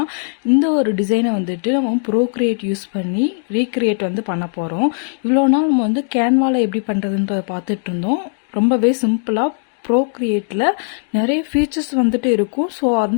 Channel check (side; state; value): right; silent; digital silence